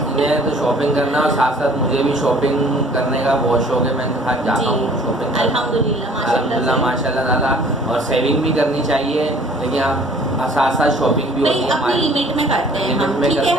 मैं तो शॉपिंग करना, और साथ साथ मुझे भी शॉपिंग करने का बहुत शौक है। मैं साथ जाता हूँ शॉपिंग। अल्हम्दुलिल्लाह माशाल्लाह ताला। और सेविंग भी करनी चाहिए, लेकिन आप साथ साथ शॉपिंग भी होती है अपनी लिमिट में करते हैं हम। ठीक है,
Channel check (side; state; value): both; normal; correlation 0.53